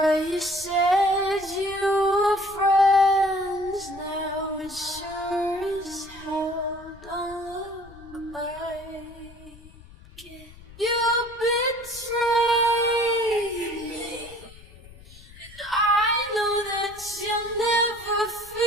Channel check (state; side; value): noise; left; rumble, 21 dB below the sound